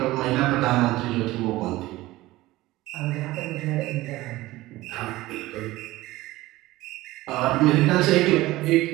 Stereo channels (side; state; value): left; quieter; 18.1 dB